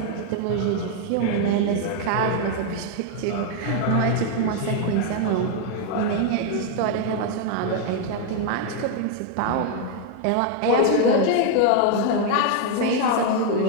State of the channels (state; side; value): different; both; correlation 0.00